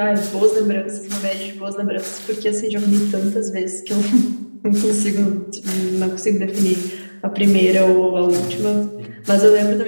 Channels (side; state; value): both; inverted; correlation -1.00